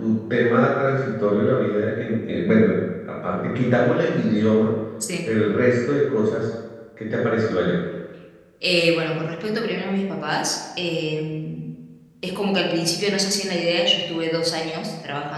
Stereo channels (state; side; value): identical; both; correlation 1.00